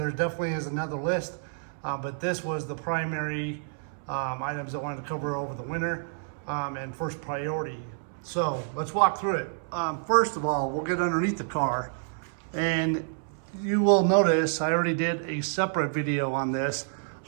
definitely is another list, but this was the primary items I wanted to cover over the winter and first priority. So let's walk through it. First of all, we'll get underneath the car, and you will notice I already did a separate video on this,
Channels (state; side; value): silent; left; 59 dB below the other